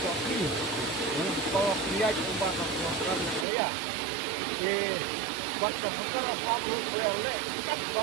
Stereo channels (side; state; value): left; drops out; at 3.5 s